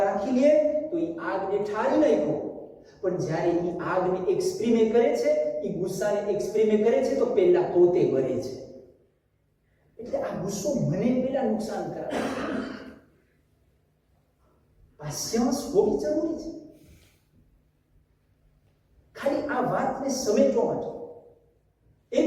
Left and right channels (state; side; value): identical; both; correlation 1.00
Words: રાખી લે તો એ આગને ઠારી નાખો, પણ જ્યારે એ આગને એક્સપ્રીમે કરે છે, એ ગુસ્સાને એક્સપ્રીમે કરે છે તો પહેલા પોતે બરે છે. એટલે આ ગુસ્સો મને પહેલા નુકસાન કરાવે. પેશન્સ હોવી જરૂરી છે. વાતને સમેટવા માટે.